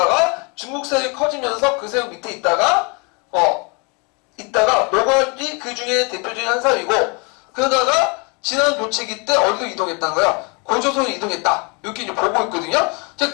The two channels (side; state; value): right; quieter; 31.9 dB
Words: 중국 세력이 커지면서 그 세력 밑에 있다가 노관이 그 중에 대표적인 한 사람이고, 그러다가 지난 교체기 때 어디로 이동했다는 거야? 고조선으로 이동했다. 이렇게 이제 보고 있거든요. 자,